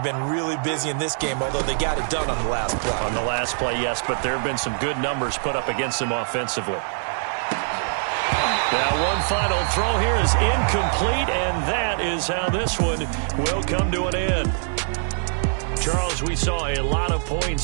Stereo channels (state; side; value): silent; left; 63 dB below the other